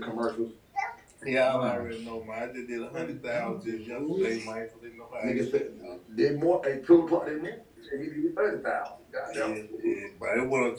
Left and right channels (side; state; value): both; identical; correlation 1.00